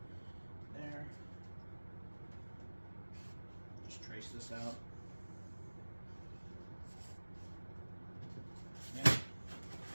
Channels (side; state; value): both; inverted; correlation -1.00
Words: there. Just trace this out. Yeah.